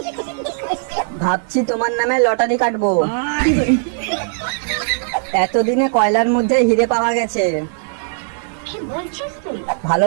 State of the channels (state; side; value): silent; left; digital silence